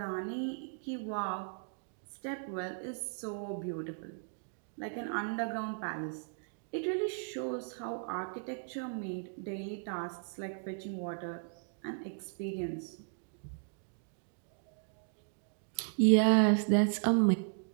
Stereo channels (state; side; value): silent; left; digital silence